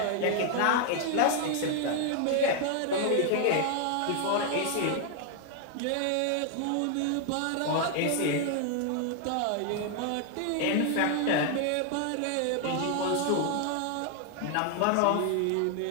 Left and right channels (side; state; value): both; different; correlation 0.00